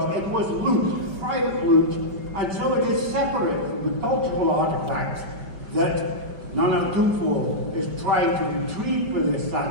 it was loot, private loot, and so it is separate from the cultural artifacts that Nana Tufo is trying to retrieve for the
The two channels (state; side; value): late; left; 5.1 ms